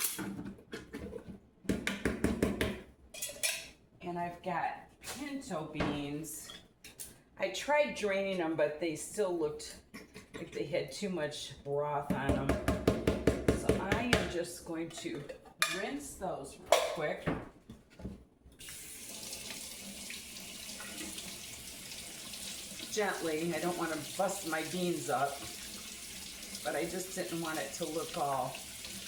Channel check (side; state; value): both; identical; correlation 1.00